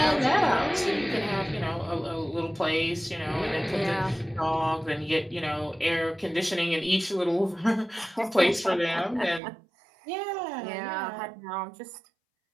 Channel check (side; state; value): left; drops out; at 9.4 s